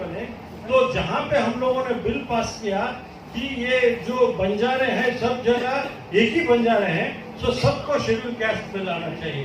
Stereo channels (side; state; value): both; identical; correlation 1.00